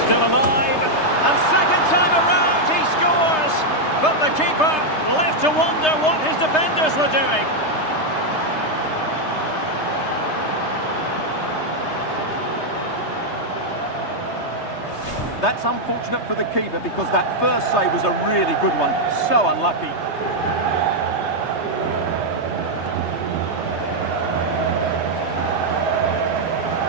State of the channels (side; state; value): right; late; 3.3 ms